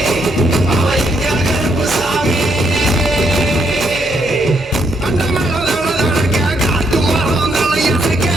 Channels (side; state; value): both; normal; correlation 0.75